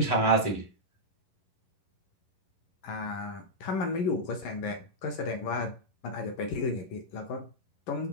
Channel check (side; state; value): right; late; 11 ms